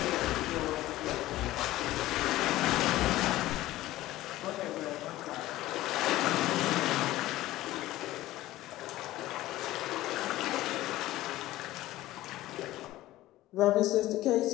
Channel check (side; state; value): right; quieter; 16.1 dB